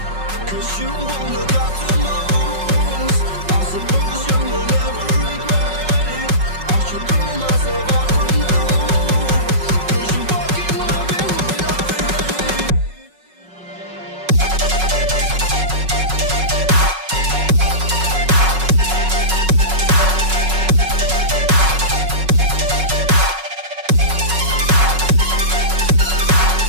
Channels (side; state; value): left; late; 5.4 ms